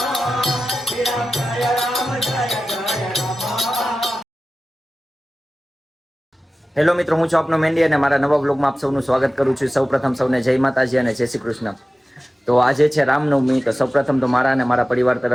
હેલો મિત્રો, હું છું આપનો મેન્ડી અને મારા નવા બ્લોગમાં આપ સૌનું સ્વાગત કરું છું. સૌપ્રથમ સૌને જય માતાજી અને જય શ્રી કૃષ્ણ. તો આજે છે રામનવમી. તો સૌપ્રથમ તો મારા અને મારા પરિવાર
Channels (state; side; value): normal; both; correlation 0.95